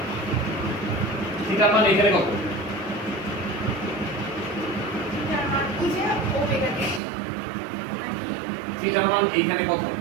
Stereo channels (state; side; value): drops out; left; at 7.0 s